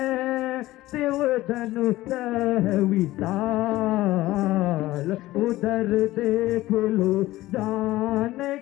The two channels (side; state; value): right; quieter; 16.9 dB